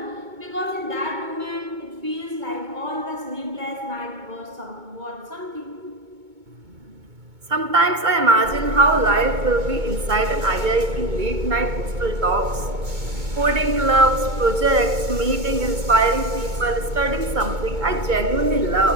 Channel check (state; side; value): late; left; 2.2 ms